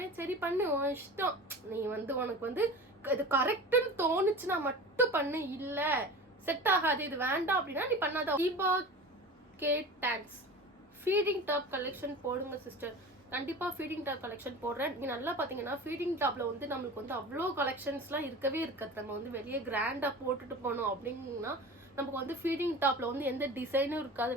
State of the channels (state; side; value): normal; both; correlation 0.35